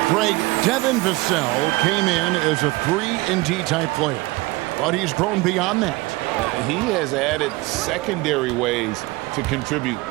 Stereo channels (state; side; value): quieter; left; 21.5 dB